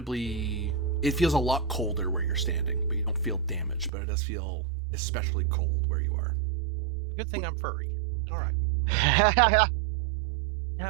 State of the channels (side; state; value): left; drops out; at 3.9 s